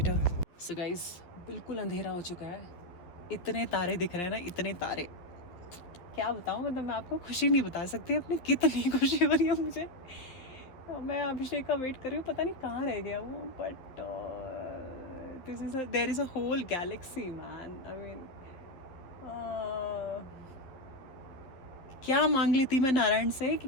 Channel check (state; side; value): late; right; 11 ms